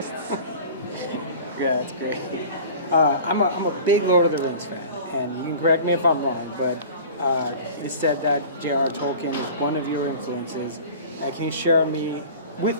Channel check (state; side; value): inverted; both; correlation -0.41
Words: Yeah, that's great. I'm a big Lord of the Rings fan, and you can correct me if I'm wrong, but it is said that J.R. Tolkien is one of your influences. Can you share with